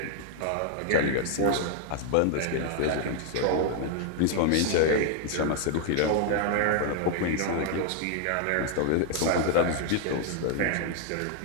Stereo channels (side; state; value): both; different; correlation 0.00